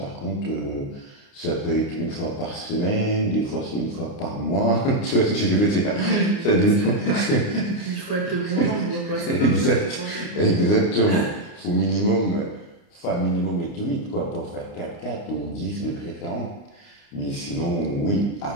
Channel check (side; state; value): right; late; 29 ms